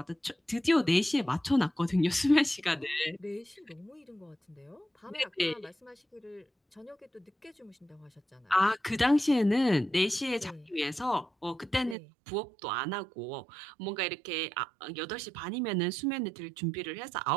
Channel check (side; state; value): left; drops out; at 12.0 s